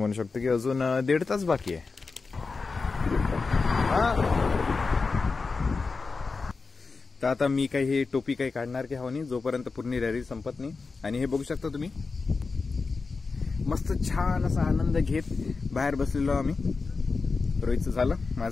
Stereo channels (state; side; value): quieter; right; 4.3 dB